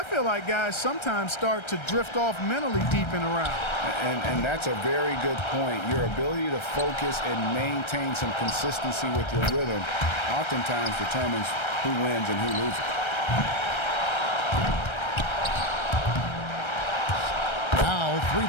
feel like guys sometimes start to drift off mentally deep in a round. And that's a very good point. Your ability to focus and maintain some consistency with your rhythm oftentimes determines who wins and who loses. Now 3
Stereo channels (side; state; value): right; late; 1.3 ms